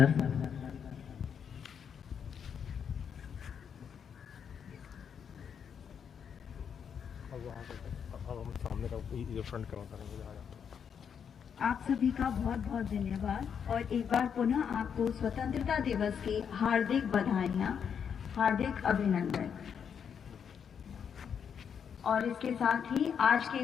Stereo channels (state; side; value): quieter; right; 7.4 dB